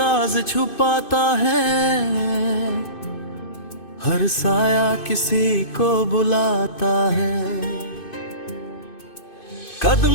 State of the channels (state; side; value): late; right; 2.5 ms